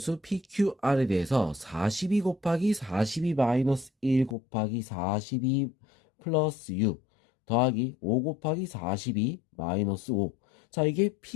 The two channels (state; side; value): drops out; right; at 4.4 s